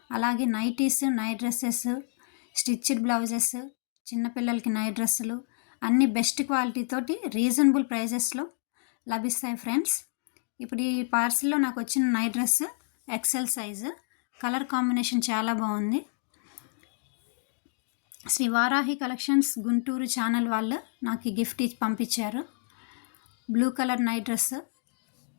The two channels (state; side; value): silent; right; digital silence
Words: అలాగే nighties, night dresses, stitched blouses, చిన్నపిల్లలకి నైట్ డ్రెస్సులు అన్నీ బెస్ట్ క్వాలిటీ తోటి రీజనబుల్ ప్రైజెస్లో లభిస్తాయి ఫ్రెండ్స్. ఇప్పుడు ఈ పార్సిల్లో నాకు వచ్చిన night dress XL size, colour combination చాలా బాగుంది. శ్రీ వారాహి కలెక్షన్స్ గుంటూరు ఛానల్ వాళ్ళు నాకు ఈ గిఫ్ట్ ఇచ్చి పంపించారు. Blue colour night dress.